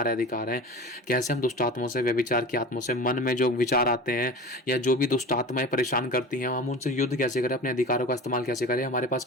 अधिकार हैं, कैसे हम दुष्ट आत्माओं से, व्यभिचार की आत्माओं से, मन में जो विचार आते हैं या जो भी दुष्ट आत्माएं परेशान करती हैं, हम उनसे युद्ध कैसे करें, अपने अधिकारों का इस्तेमाल कैसे करें, हमारे पास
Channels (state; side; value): normal; both; correlation 0.34